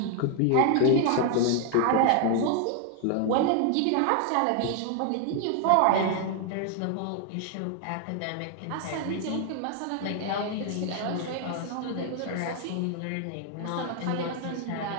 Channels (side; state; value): both; different; correlation 0.00